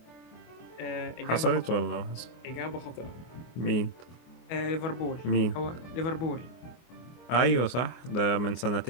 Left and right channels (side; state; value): right; late; 24 ms